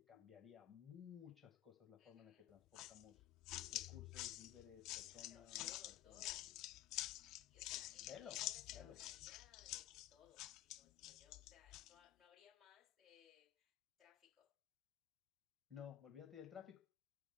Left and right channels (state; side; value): quieter; right; 14.0 dB